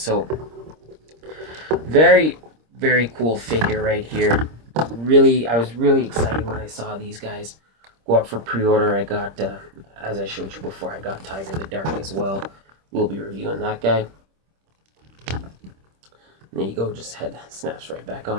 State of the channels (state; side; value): late; left; 26 ms